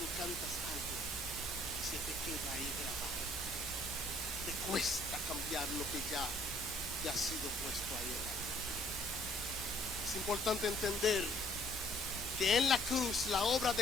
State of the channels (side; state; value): left; noise; hum, 20 dB below the sound